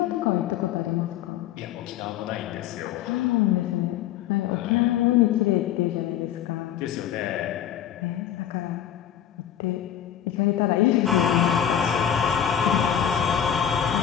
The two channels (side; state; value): right; quieter; 10.0 dB